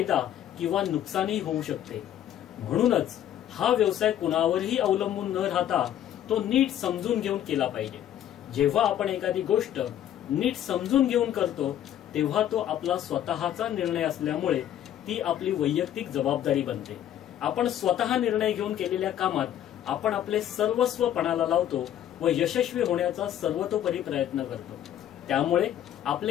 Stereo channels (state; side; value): quieter; right; 11.2 dB